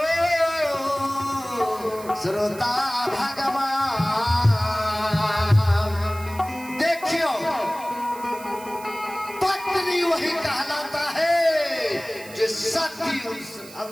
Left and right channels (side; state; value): right; noise; hiss, 18 dB below the sound